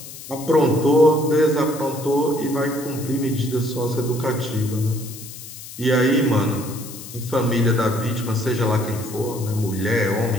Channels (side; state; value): left; noise; hiss, 14 dB below the sound